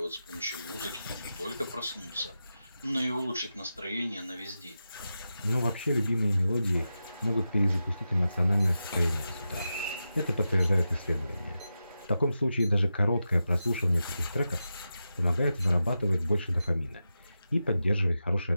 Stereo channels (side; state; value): both; inverted; correlation -0.91